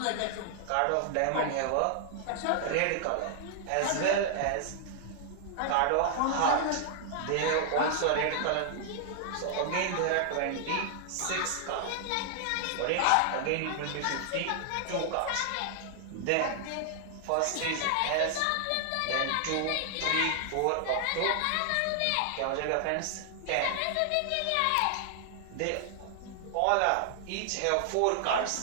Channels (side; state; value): both; different; correlation 0.00